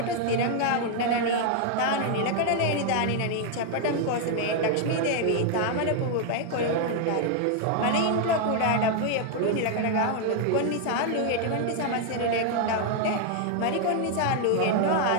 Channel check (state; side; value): different; both; correlation 0.00